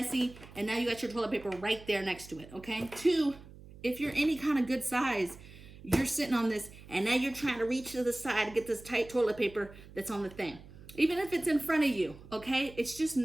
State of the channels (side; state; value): right; noise; hum, 19 dB below the sound